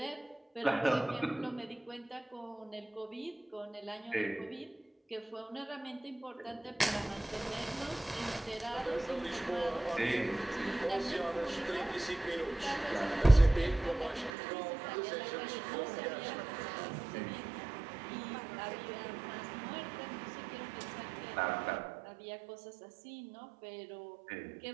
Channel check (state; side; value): drops out; left; at 14.3 s